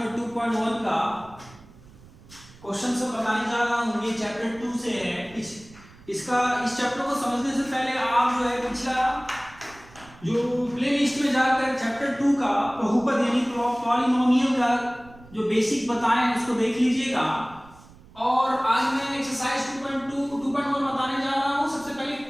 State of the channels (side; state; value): right; noise; rumble, 23 dB below the sound